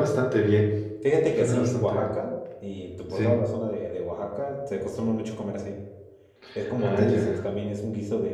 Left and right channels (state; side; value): identical; both; correlation 1.00